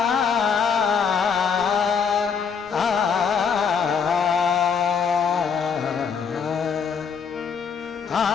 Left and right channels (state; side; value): quieter; right; 6.4 dB